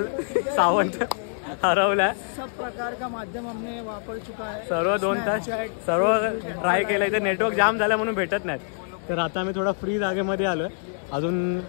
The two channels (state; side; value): silent; right; digital silence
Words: सावंत हरवला. सब प्रकार का माध्यम हमने वापर चुका है. सर्व 2 तास सर्व ट्राय केलं. इथे नेटवर्क जाम झालं म्हणून भेटत नाहीत. तर आता आम्ही थोडा फ्री जागेमध्ये आलोय. अजून